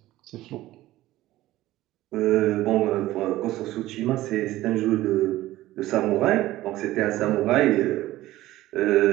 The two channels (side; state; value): left; quieter; 16.0 dB